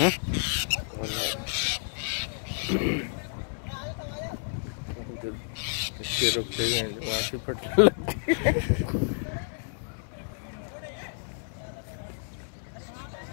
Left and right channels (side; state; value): right; silent; digital silence